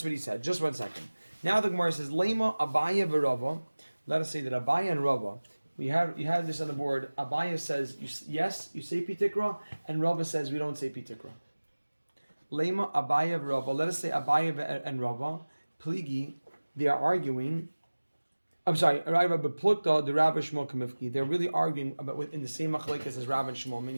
what he said. Just 1 second. Now the Gemara says Lema Abaya v'Rava. Let us say that Abaya and Rava. You have this on the board. Abaya says yes, you say Pitikra, and Rava says we don't say Pitikra. Lema Abaya v'Rava. Let us say Abaya and Rava. Pligi, they are arguing. I'm sorry, Rabbi Plukta, the Rav and Shmuel Kamifki. They're really arguing about in the same machlekes as Rav and Shmuel,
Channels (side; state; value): both; inverted; correlation -1.00